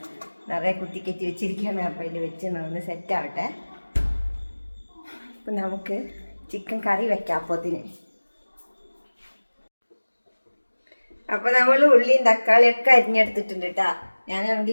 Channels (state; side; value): inverted; both; correlation -1.00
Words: നിറയെ കുത്തിക്കറ്റി വെച്ചിരിക്കുകയാണ്. അപ്പോൾ അതിൽ വെച്ച് ഒന്ന് സെറ്റാവട്ടെ. അപ്പം നമുക്ക് ചിക്കൻ കറി വെക്കാം അപ്പോഴത്തിന്. അപ്പോൾ നമ്മൾ ഉള്ളിയും തക്കാളിയൊക്കെ അരിഞ്ഞെടുത്തിട്ടുണ്ട് കേട്ടോ.